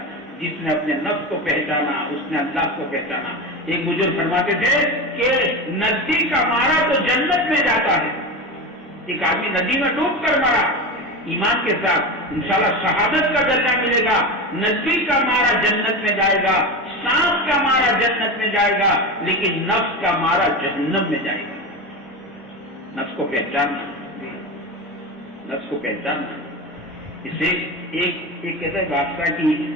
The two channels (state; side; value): normal; both; correlation 0.23